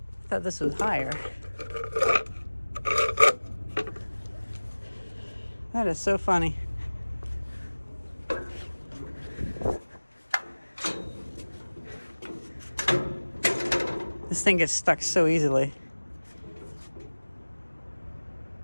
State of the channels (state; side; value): inverted; both; correlation -1.00